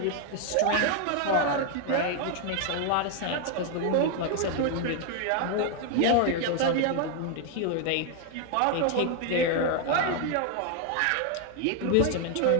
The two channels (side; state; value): both; different; correlation 0.01